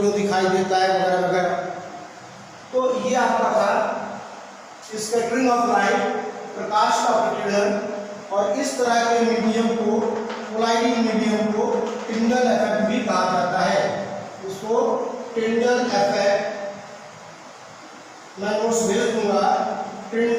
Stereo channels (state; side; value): identical; both; correlation 1.00